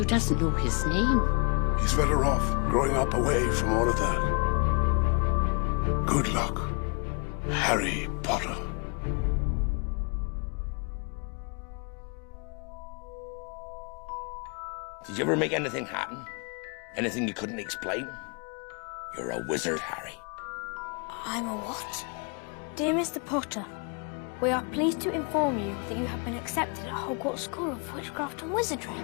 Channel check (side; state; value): right; quieter; 35.5 dB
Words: doesn't know his name. He's better off growing up away from all of that. Good luck, Harry Potter. Did you ever make anything happen? Anything you couldn't explain? You're a wizard, Harry. I'm a what? Dear Mr. Potter, we are pleased to inform you that you have been accepted at Hogwarts School of Witchcraft and Wizardry.